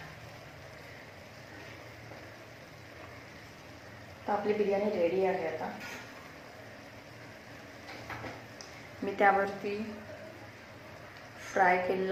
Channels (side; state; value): both; identical; correlation 1.00